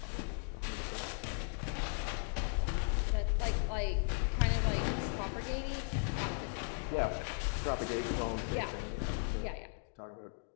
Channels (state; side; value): silent; right; 53 dB below the other